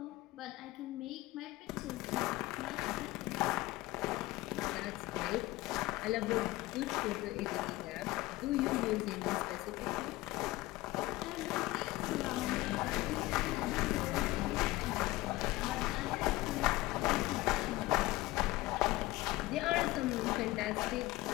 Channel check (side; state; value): right; quieter; 18.9 dB